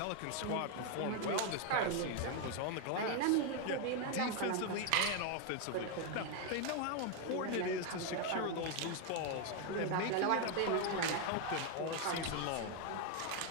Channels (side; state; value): both; different; correlation 0.01